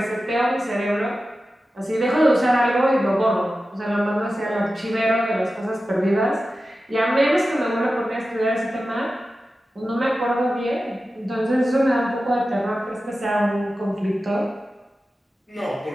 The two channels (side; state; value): both; normal; correlation 0.93